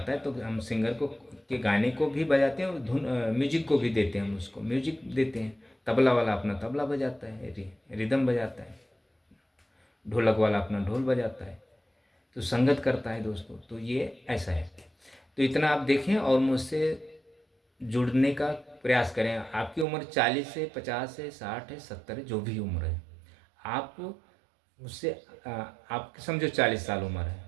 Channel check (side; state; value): left; drops out; at 19.9 s